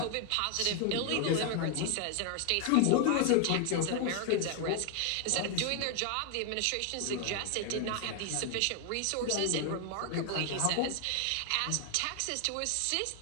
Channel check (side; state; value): both; different; correlation 0.00